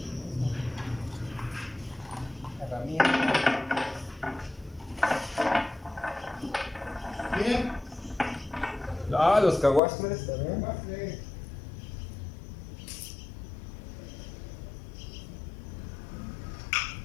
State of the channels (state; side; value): drops out; right; at 9.8 s